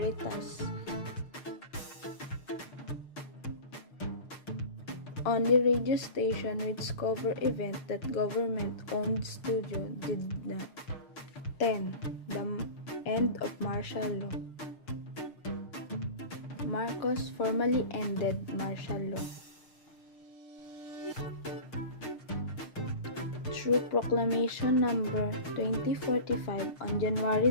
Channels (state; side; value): late; right; 6.5 ms